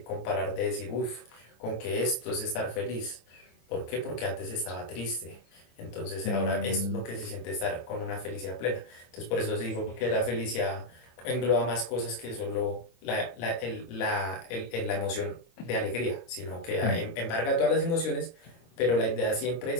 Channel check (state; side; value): late; right; 24 ms